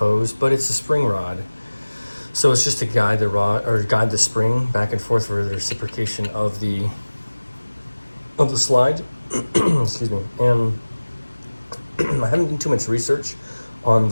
but it's a spring rod. So it's just to guide the rod or guide the spring back and forth for the reciprocation of the slide. Excuse me. And I haven't done too much research on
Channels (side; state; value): both; inverted; correlation -1.00